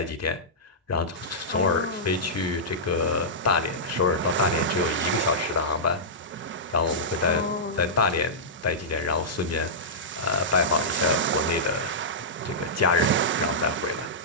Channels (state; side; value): normal; both; correlation -0.13